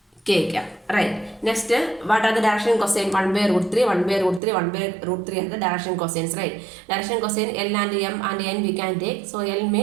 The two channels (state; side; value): drops out; left; at 4.4 s